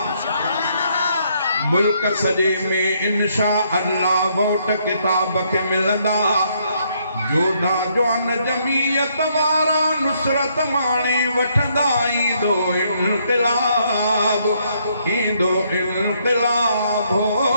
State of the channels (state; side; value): inverted; both; correlation -0.71